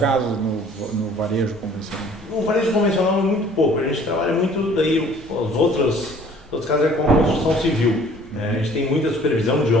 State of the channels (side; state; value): both; normal; correlation 0.53